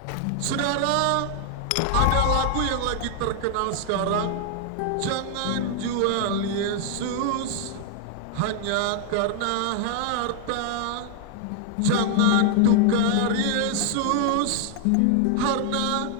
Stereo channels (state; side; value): different; both; correlation 0.00